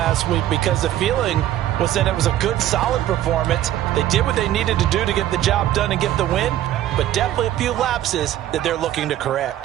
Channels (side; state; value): left; quieter; 12.8 dB